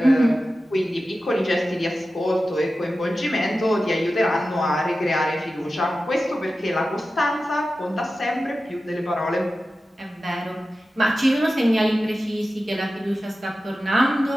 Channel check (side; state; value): both; normal; correlation 0.93